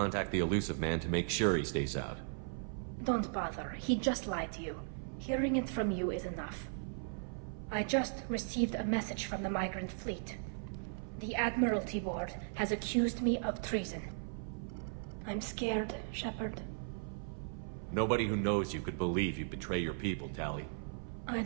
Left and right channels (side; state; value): left; silent; 53 dB below the other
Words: the elusive man to make sure he stays out. Don't bother. He just lied to you. Hearing it from you is enough. I just received a message from the migrant fleet. The Admiralty Board has accused me of treason. I'm scared, Shepard. Nobody who knows you could believe you betray your people, Tali. I